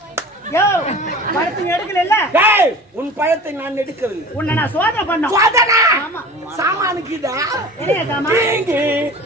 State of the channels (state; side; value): normal; both; correlation 0.39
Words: யோ பழத்தை எடுக்கல இல்ல டேய் உன் பழத்தை நான் எடுக்கவில்லை உன்னை நான் சோதனை பண்ணோம் சோதனை ஆமா சாமானுக்குதா என்ன சாமா